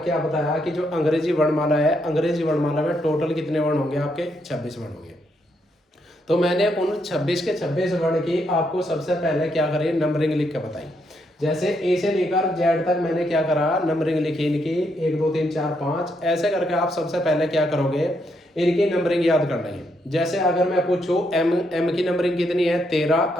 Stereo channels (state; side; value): normal; both; correlation 0.77